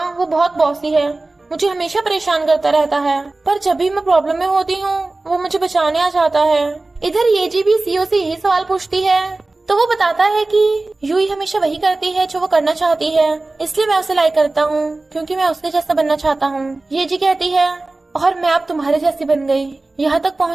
वो बहुत बॉसी है, मुझे हमेशा परेशान करता रहता है, पर जब भी मैं प्रॉब्लम में होती हूँ वो मुझे बचाने आ जाता है। इधर येजी भी सीओ से यही सवाल पूछती है, तो वो बताता है कि यूई हमेशा वही करती है जो वो करना चाहती है, इसलिए मैं उसे लाइक करता हूँ क्योंकि मैं उसके जैसा बनना चाहता हूँ। येजी कहती है, और मैं अब तुम्हारे जैसी बन गई, यहाँ तक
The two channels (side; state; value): left; quieter; 3.1 dB